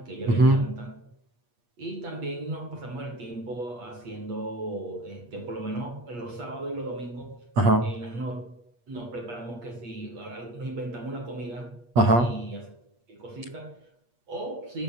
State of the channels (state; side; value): late; left; 8.4 ms